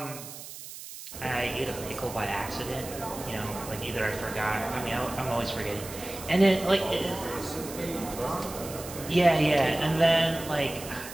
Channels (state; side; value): noise; right; hiss, 12 dB below the sound